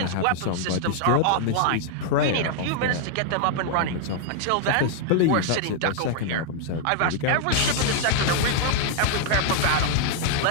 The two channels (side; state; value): both; different; correlation 0.00